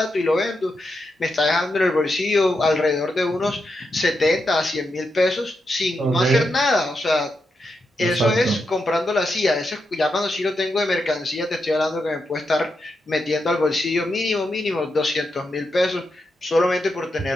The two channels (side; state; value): both; normal; correlation 0.85